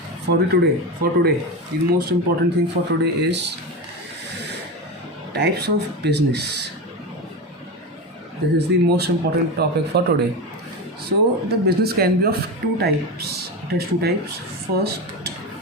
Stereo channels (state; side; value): normal; both; correlation 0.20